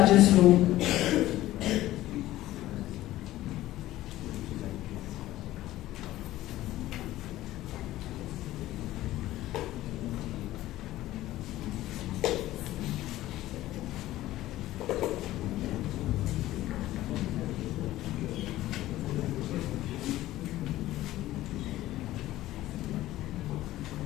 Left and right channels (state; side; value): quieter; right; 15.4 dB